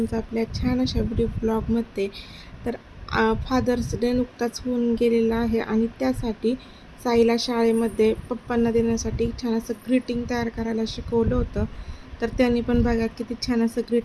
आपल्या छान अशा व्हिडिओ ब्लॉगमध्ये. तर फादर्स डे नुकताच होऊन गेलेला आहे आणि त्यासाठी साईला शाळेमध्ये पप्पांना देण्यासाठी छान असं ग्रीटिंग तयार करायला शिकवलं होतं. तर त्यांनी पण बघा किती छान असं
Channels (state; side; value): identical; both; correlation 1.00